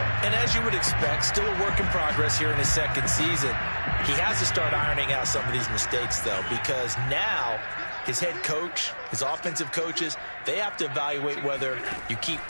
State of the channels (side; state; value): both; inverted; correlation -1.00